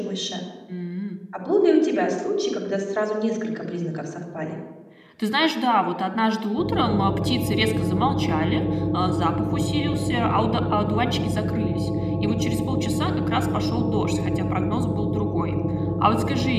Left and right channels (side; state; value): both; identical; correlation 1.00